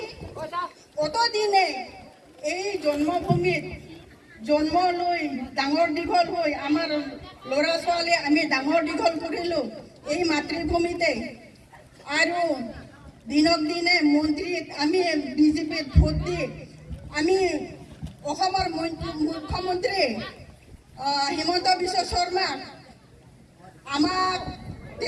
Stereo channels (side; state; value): both; identical; correlation 1.00